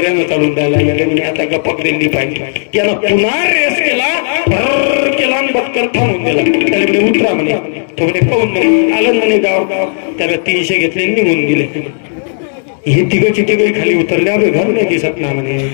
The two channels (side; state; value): right; silent; digital silence